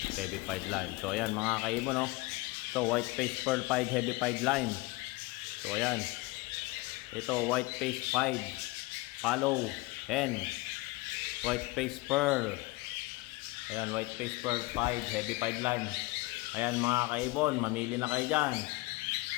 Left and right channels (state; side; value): quieter; right; 22.5 dB